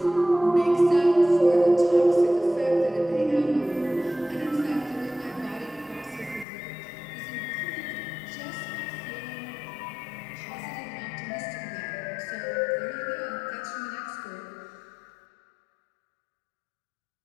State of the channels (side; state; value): right; drops out; at 6.5 s